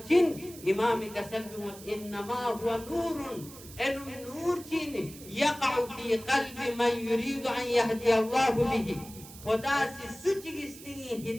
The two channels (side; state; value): right; noise; hiss, 17 dB below the sound